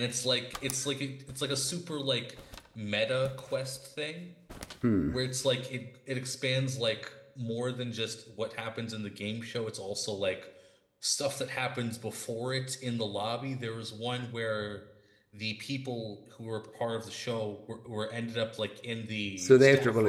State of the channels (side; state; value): both; identical; correlation 1.00